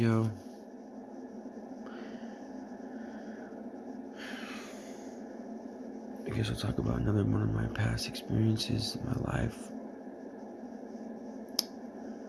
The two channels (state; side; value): identical; both; correlation 1.00